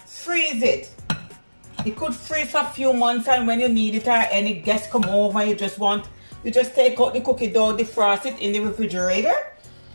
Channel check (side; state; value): both; inverted; correlation -1.00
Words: freeze it. It could freeze for a few months, and when you need it or any guests come over, you just take out the cookie dough, defrost it in the refrigerator,